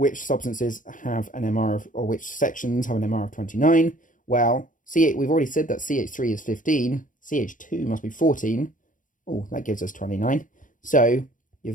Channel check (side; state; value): right; late; 0.38 ms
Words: substances have an MR of, or which sections have an MR of 29? Well, we've already said that CH3 is 15. CH2 must be 14. Oh, that gives us 29. So